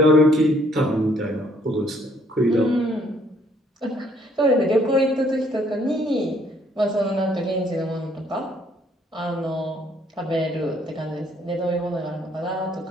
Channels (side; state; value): both; normal; correlation 0.65